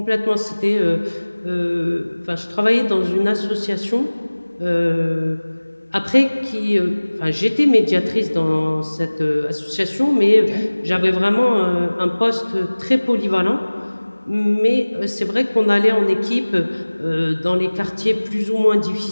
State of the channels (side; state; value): both; inverted; correlation -1.00